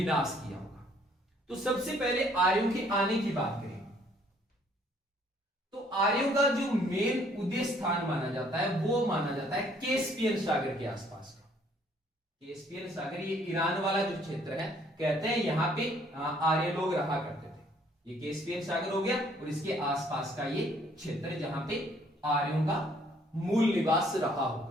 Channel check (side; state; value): both; normal; correlation 0.62